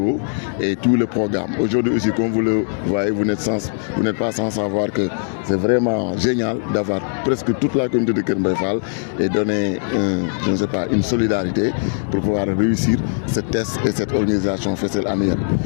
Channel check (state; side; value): silent; right; digital silence